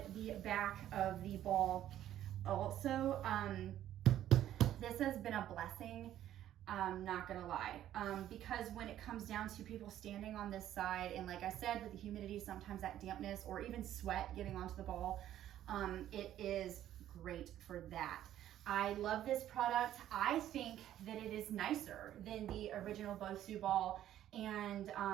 the back of the ball also. This has been a blessing, not gonna lie, because when it comes down to people standing on this side, and like I said, with the humidity, sometimes that dampness or even sweat getting onto the ball, it is great for that. I love this product. I think that it is nicer than the original Bosu ball. And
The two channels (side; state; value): left; quieter; 12.1 dB